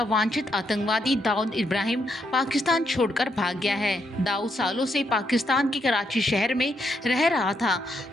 वांछित आतंकवादी दाऊद इब्राहिम पाकिस्तान छोड़कर भाग गया है। दाऊद सालों से पाकिस्तान के कराची शहर में रह रहा था।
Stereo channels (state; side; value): normal; both; correlation 0.78